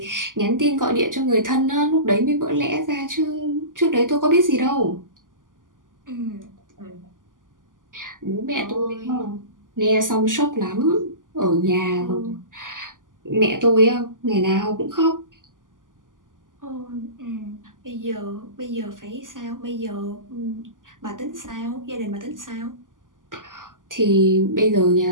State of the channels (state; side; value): late; left; 0.88 ms